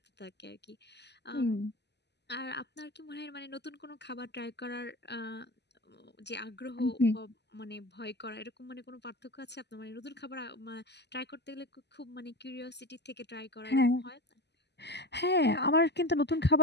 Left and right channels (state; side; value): late; right; 0.50 ms